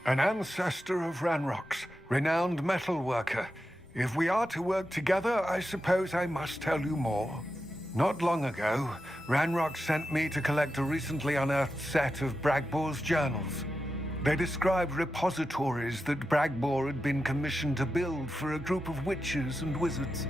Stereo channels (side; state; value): both; normal; correlation 0.90